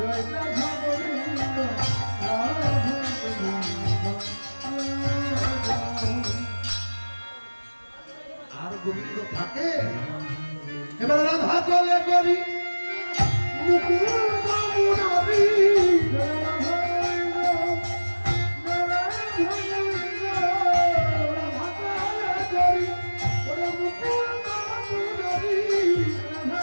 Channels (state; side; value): inverted; both; correlation -1.00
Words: রাধা গোবিন্দ রাধা গোবিন্দ। আর গোবিন্দ থাকে। এবার রাধা চলে করি মুকুন্দ মুরারি,